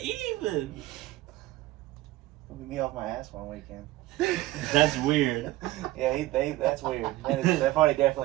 even? Me off my ass one weekend. That's weird. Yeah, that's weird. That party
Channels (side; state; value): left; quieter; 16.9 dB